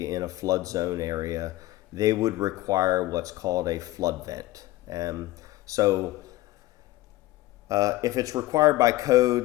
in a flood zone area. They would require what's called a flood vent. If it's required by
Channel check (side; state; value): right; quieter; 17.2 dB